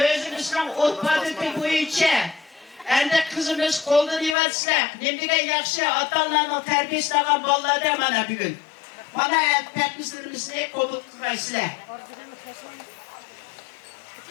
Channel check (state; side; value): drops out; right; at 4.4 s